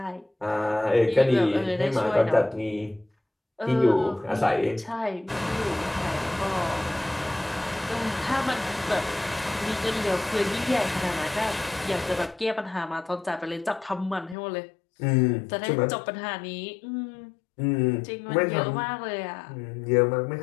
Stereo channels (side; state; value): right; drops out; at 14.4 s